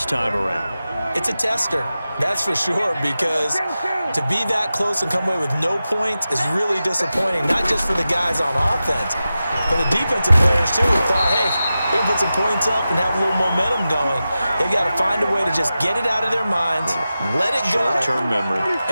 time around? It's a tester, that's for sure, because to be that close and come away with no points is really disappointing, not just for the guys on offense, but the defensive players, too, who thought, hey, we can put some points up and have a little momentum going. They've got to find a way to just get it out of their minds, let it go, short-term memory,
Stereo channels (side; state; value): both; inverted; correlation -0.93